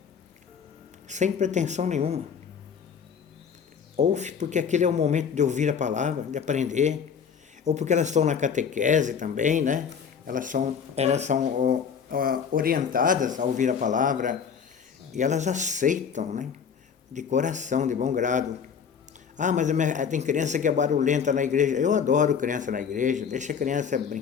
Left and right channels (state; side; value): quieter; right; 6.9 dB